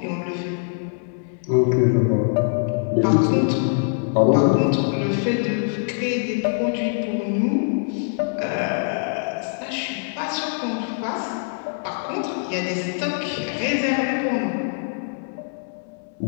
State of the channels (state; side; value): silent; right; 63 dB below the other